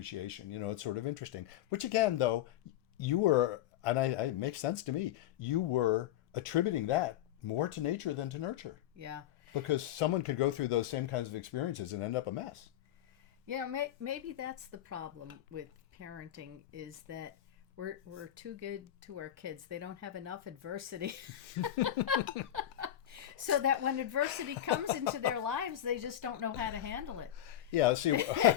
It's sort of interesting. Which again, though, you were, and it makes sense to me, you were attributing that more to nature than to nurture. Yeah. Because someone could go through those same kinds of experiences and end up a mess. Maybe that's the problem with parenting, is that we're too good to our kids. They don't have enough adversity. So that when adversity comes into their lives, they just don't know how to handle it. Yeah, see,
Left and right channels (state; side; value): quieter; right; 11.9 dB